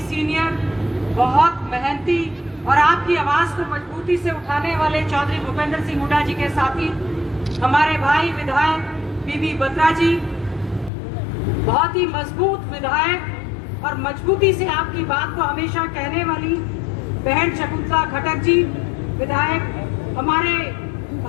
सीनियर, बहुत मेहनती और आपकी आवाज को मजबूती से उठाने वाले चौधरी भूपेंद्र सिंह हुड्डा जी के साथी हमारे भाई विधायक बीबी बत्रा जी, बहुत ही मजबूत विधायक और मजबूती से आपकी बात को हमेशा कहने वाली बहन शकुंतला खटक जी, विधायक हमारे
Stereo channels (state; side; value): drops out; right; at 10.9 s